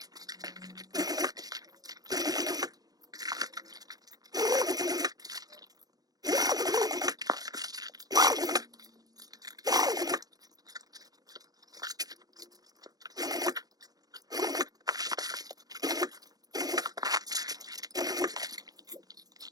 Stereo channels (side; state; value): left; late; 0.19 ms